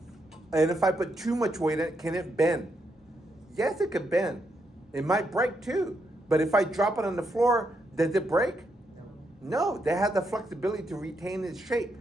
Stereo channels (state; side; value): normal; both; correlation 0.80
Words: and if I put too much weight in it, can it bend? Yes, it could bend. It might break too. But if I drop it on the floor, does it break? No, they have the flexibility to retain its shape,